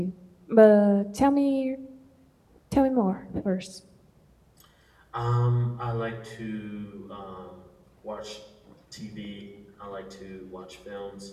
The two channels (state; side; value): identical; both; correlation 1.00